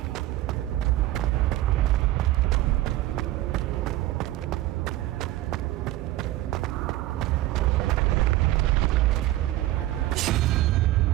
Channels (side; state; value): left; quieter; 15.9 dB